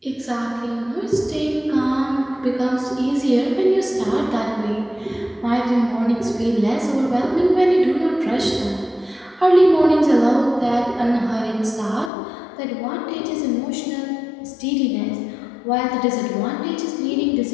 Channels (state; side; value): drops out; right; at 12.1 s